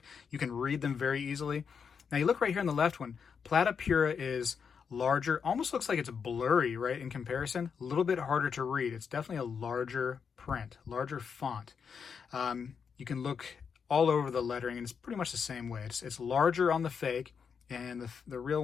can read them very easily. Now you look right here on the left one, Plata Pura is larger, almost looks like it's blurry, right, in comparison. A little bit harder to read. It's definitely a larger print, larger font. You can look all over the lettering, and it's pretty much the same way. It's larger on the fake, and the real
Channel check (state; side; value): quieter; right; 6.4 dB